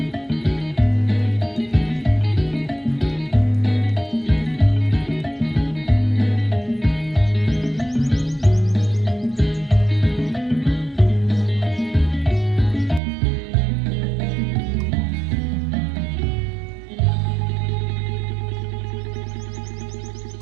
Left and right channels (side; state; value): left; drops out; at 13.0 s